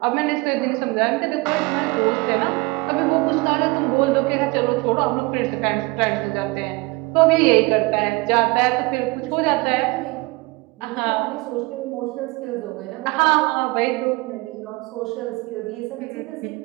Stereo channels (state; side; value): quieter; left; 24.3 dB